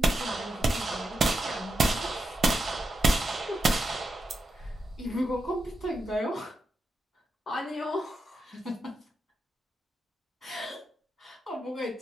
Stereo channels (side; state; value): both; normal; correlation 0.87